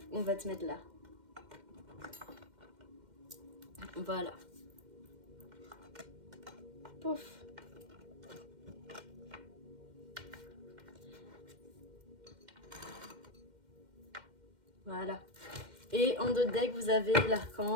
on va te mettre là. Voilà. Pouf. Voilà. Et en dos de deck, vous avez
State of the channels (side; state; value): left; late; 2.1 ms